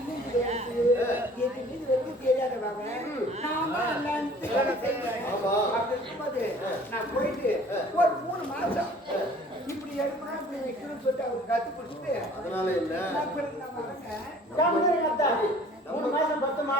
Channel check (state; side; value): normal; both; correlation 0.51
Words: நான் போயிட்டு ஒரு 3 மாசம் இப்படி எடுக்கணும் இப்படி வைக்கணும்னு சொல்லிட்டு அவருக்கு கத்து பிடிச்சிட்டு அதனால என்ன 3 மாசம் பத்துமா